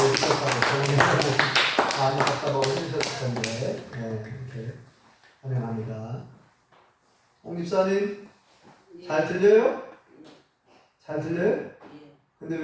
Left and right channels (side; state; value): both; identical; correlation 1.00